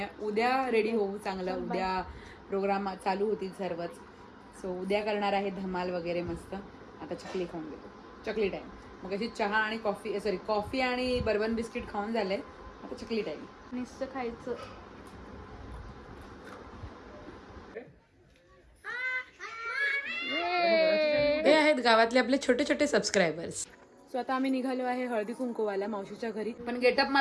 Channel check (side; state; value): both; identical; correlation 1.00